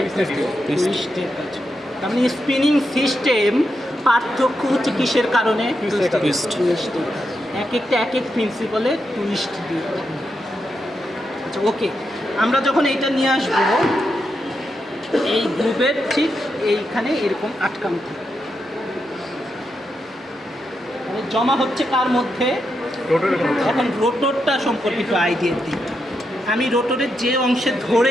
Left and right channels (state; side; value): normal; both; correlation 0.84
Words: টুইস্টের কাজ। তার মানে স্পিনিং সিস্টেম পার্থক্য হচ্ছে কিসের কারণে? টুইস্ট। এক এক প্রিন্সিপালে টুইস্ট দিয়ে। আচ্ছা ওকে, আমরা যখন এইটা নিয়ে আসবো, এই গ্রুপের ঠিক এইখানে এরকম আটকানো থাকে, মানে জমা হচ্ছে কার মধ্যে? এখন রোটরটা সম্পর্কিত আইডিয়া দিই। আমি রোটরের যে অংশে ধরে